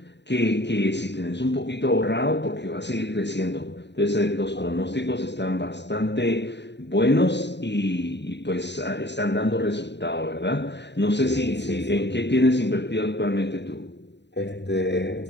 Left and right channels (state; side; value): late; right; 0.50 ms